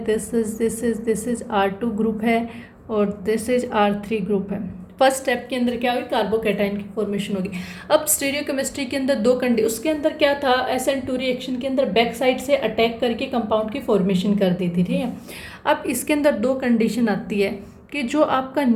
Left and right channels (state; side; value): identical; both; correlation 1.00